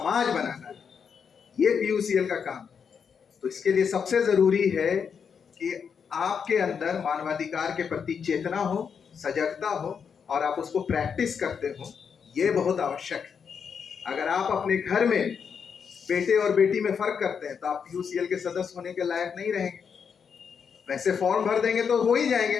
बनाना है। ये पीयूसीएल का काम। तो इसके लिए सबसे जरूरी है कि आपके अंदर मानवाधिकार के प्रति चेतना हो, सजगता हो, और आप उसको प्रैक्टिस करते हो। ये बहुत आवश्यक है। अगर आप अपने घर में बेटे और बेटी में फर्क करते हैं तो आप पीयूसीएल के सदस्य होने के लायक नहीं रहेंगे। वैसे फॉर्म भर देंगे तो हो ही जाएंगे,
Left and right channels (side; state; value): right; quieter; 6.7 dB